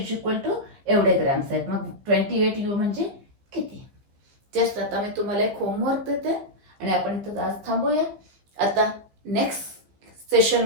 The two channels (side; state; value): left; late; 15 ms